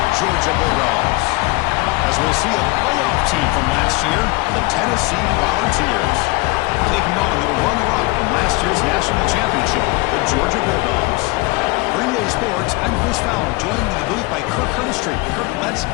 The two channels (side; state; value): right; quieter; 24.0 dB